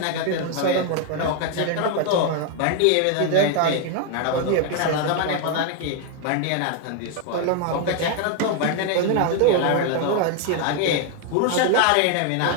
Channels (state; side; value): different; both; correlation 0.00